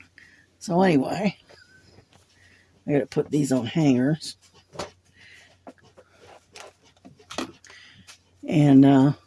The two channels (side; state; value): both; identical; correlation 1.00